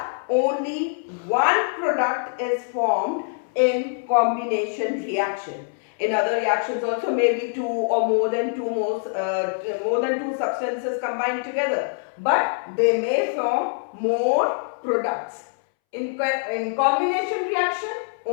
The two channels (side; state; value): right; silent; 62 dB below the other